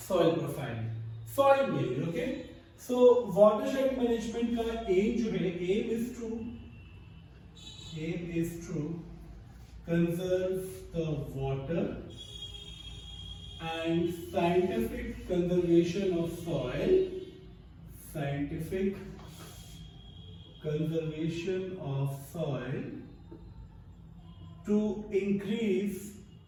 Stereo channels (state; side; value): identical; both; correlation 1.00